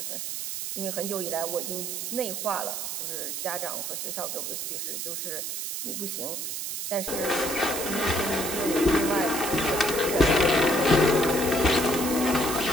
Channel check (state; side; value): noise; right; hiss, 4 dB below the sound